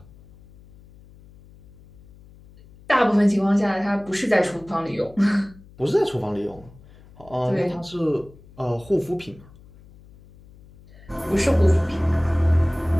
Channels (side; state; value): left; noise; hum, 24 dB below the sound